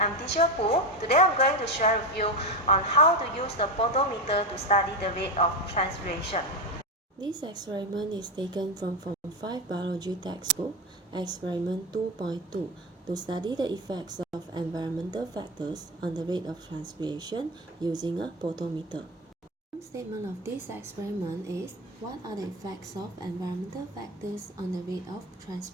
teacher Phor. Today I'm going to share with you on how to use the potometer to study the rate of transpiration. This experiment is taken from Form 5 Biology textbook, Experiment 2.2, to study the effects of environmental factors on the rate of transpiration using a potometer. One statement of this experiment is, what are the effects of environmental factors on the rate of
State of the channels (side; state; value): both; normal; correlation 0.17